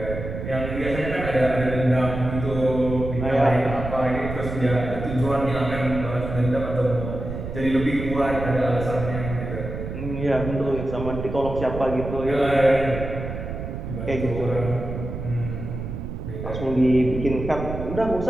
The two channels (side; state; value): right; noise; rumble, 7 dB below the sound